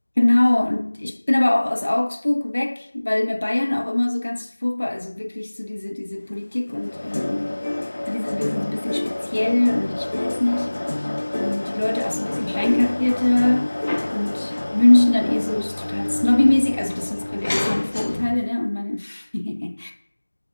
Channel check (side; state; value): both; inverted; correlation -1.00